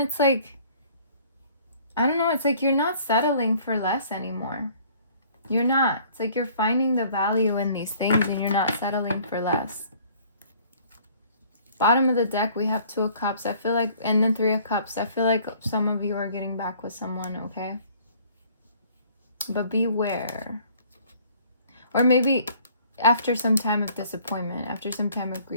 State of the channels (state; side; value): inverted; both; correlation -0.56